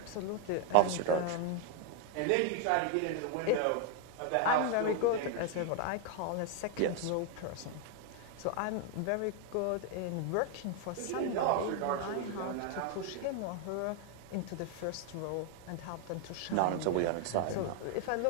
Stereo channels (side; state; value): both; different; correlation 0.00